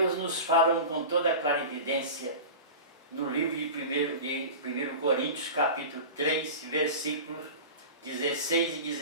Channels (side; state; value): both; inverted; correlation -0.31